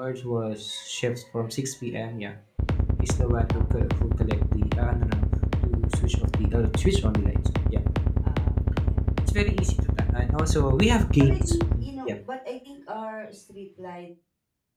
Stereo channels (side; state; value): both; identical; correlation 1.00